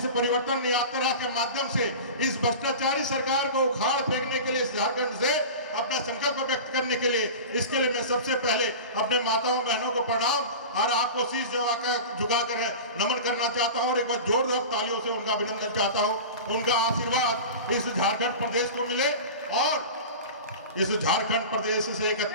परिवर्तन यात्रा के माध्यम से इस भ्रष्टाचारी सरकार को उखाड़ फेंकने के लिए इस झारखंड से अपना संकल्प व्यक्त करने के लिए, इसके लिए मैं सबसे पहले अपने माताओं बहनों को प्रणाम और आपको शीश झुकाकर नमन करना चाहता हूँ और एक बार जोरदार तालियों से उनका अभिनंदन चाहता हूँ। उनका आशीर्वाद इस झारखंड प्रदेश को मिले और इस झारखंड प्रदेश से एक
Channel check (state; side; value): inverted; both; correlation -0.32